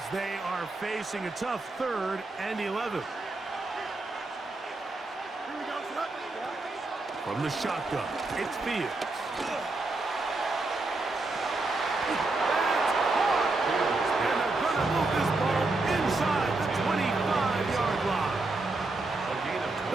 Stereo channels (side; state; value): left; quieter; 3.2 dB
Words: they are facing a tough 3rd and 11. From the shotgun, it's Fields.